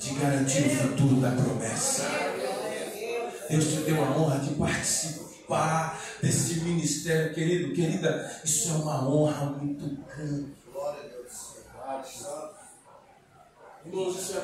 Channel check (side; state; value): both; identical; correlation 1.00